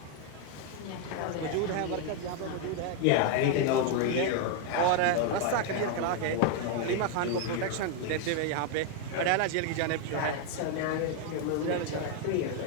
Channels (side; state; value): both; different; correlation 0.01